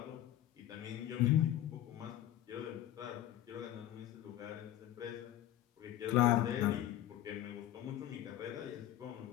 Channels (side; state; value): right; quieter; 13.0 dB